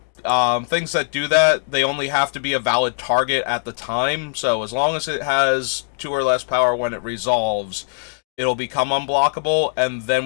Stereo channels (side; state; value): right; silent; digital silence